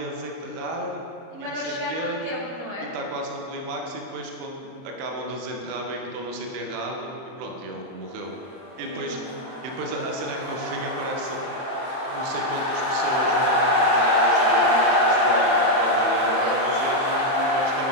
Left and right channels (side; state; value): left; late; 30 ms